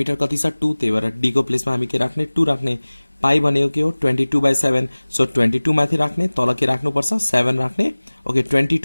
कति छ 2, त्यही भएर डी को प्लेसमा हामी के राख्ने 2 राख्ने। पाई भनेको के हो 22/7। सो 22 माथि राख्ने, तल के राख्नुपर्छ 7 राख्ने। ओके,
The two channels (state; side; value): inverted; both; correlation -1.00